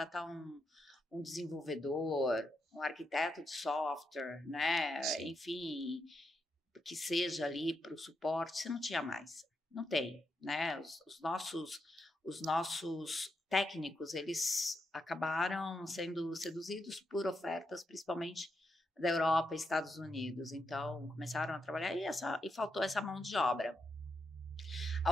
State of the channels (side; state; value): both; normal; correlation 0.83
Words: um desenvolvedor, um arquiteto de software, né? Sim. Enfim, que seja ali para o suporte, você não tinha mais. Não tem, né? Os nossos técnicos, eles acabaram sendo seduzidos por ofertas, principalmente da Europa e Estados Unidos. Então, começaram a trabalhar e faltou essa mão de obra. Há